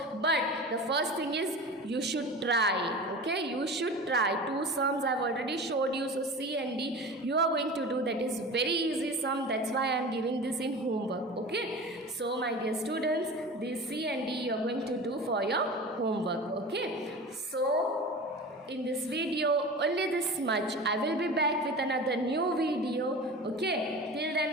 but the first thing is you should try. Okay, you should try. 2 sums I have already showed you. So C and D you are going to do. That is very easy sum. That's why I am giving this in homework. Okay, so my dear students, this C and D you are going to do for your homework. Okay, so in this video only this much. I will be back with another new video. Okay, till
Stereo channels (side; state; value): both; normal; correlation 0.34